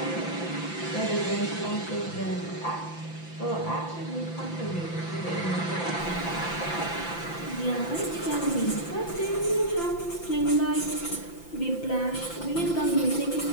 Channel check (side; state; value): right; late; 5.9 ms